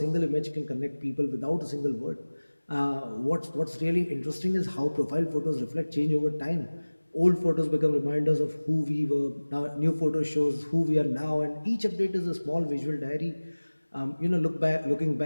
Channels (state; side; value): inverted; both; correlation -1.00